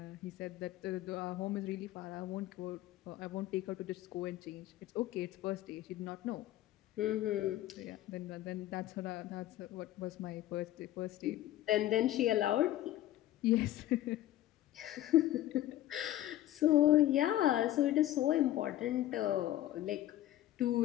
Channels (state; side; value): quieter; right; 14.0 dB